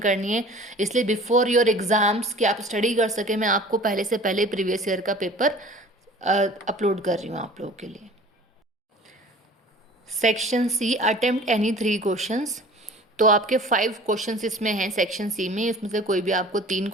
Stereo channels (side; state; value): both; normal; correlation 0.45